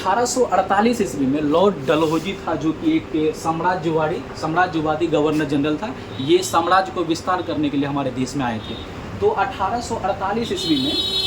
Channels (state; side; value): identical; both; correlation 1.00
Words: ईस्वी में लॉर्ड डलहौजी था, जो कि एक साम्राज्यवादी गवर्नर जनरल था। ये साम्राज्य को विस्तार करने के लिए हमारे देश में आए थे। तो 1848